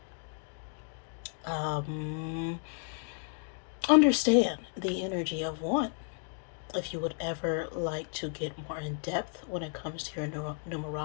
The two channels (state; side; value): silent; right; 56 dB below the other